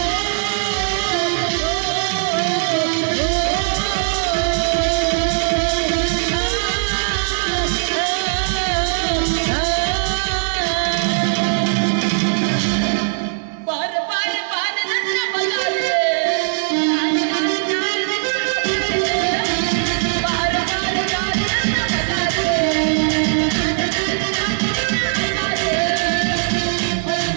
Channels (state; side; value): silent; left; digital silence